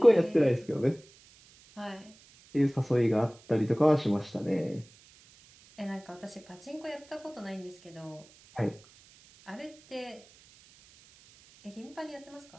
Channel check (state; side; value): noise; right; hiss, 26 dB below the sound